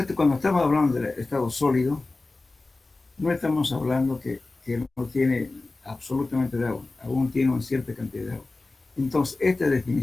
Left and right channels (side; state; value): right; quieter; 3.3 dB